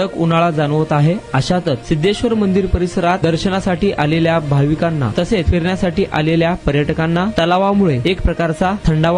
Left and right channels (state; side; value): identical; both; correlation 1.00